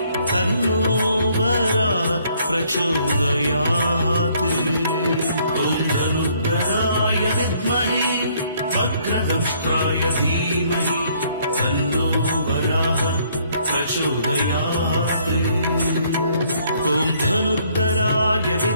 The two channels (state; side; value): inverted; both; correlation -0.65